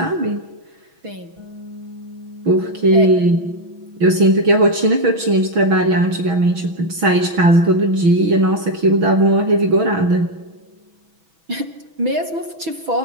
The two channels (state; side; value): late; left; 6.2 ms